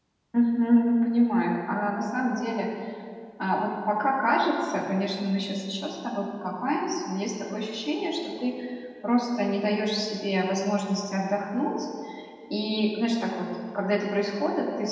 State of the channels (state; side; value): identical; both; correlation 1.00